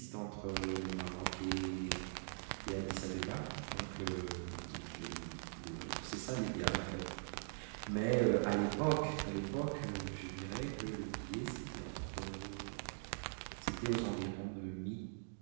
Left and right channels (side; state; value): left; silent; digital silence